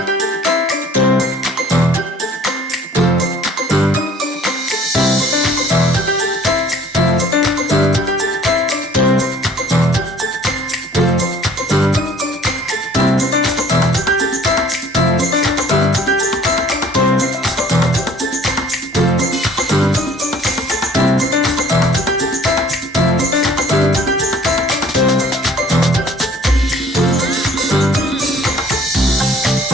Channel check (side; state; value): both; normal; correlation 0.54